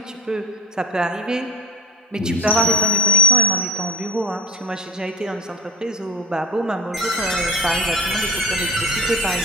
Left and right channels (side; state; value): both; normal; correlation 0.29